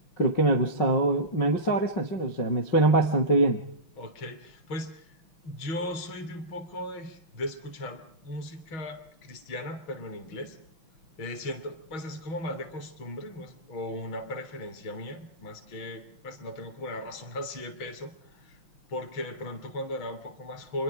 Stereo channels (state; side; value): late; right; 6.3 ms